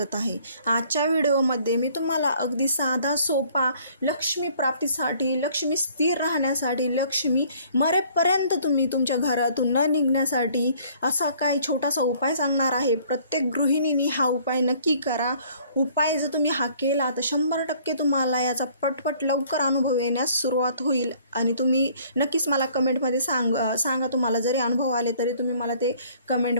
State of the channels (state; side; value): inverted; both; correlation -0.58